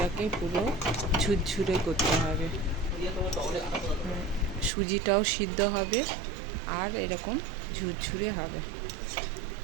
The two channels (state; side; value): drops out; left; at 4.7 s